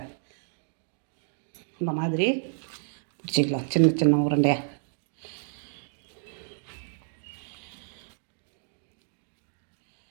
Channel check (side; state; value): left; silent; digital silence